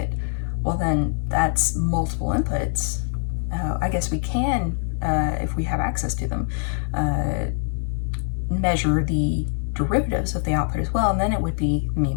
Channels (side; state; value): right; silent; digital silence